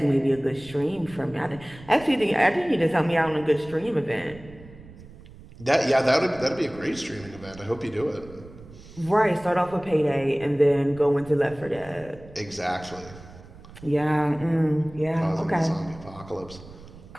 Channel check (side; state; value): right; noise; rumble, 19 dB below the sound